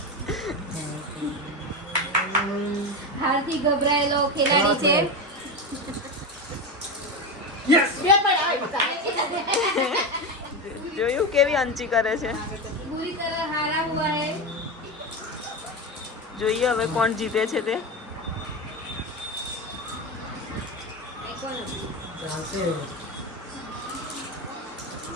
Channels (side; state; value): both; normal; correlation 0.17